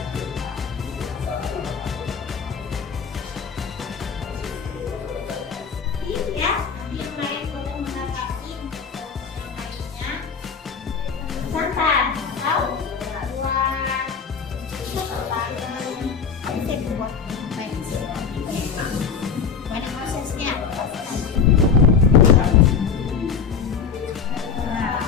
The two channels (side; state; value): right; quieter; 6.2 dB